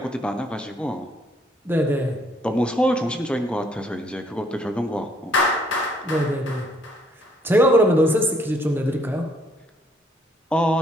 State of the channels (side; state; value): both; normal; correlation 0.66